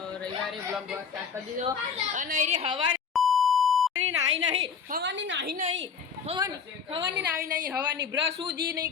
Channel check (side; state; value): right; quieter; 6.4 dB